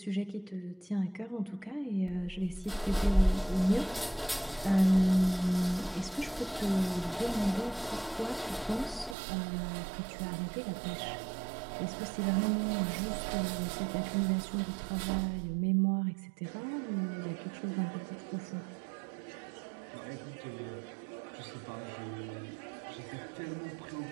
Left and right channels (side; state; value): left; drops out; at 9.2 s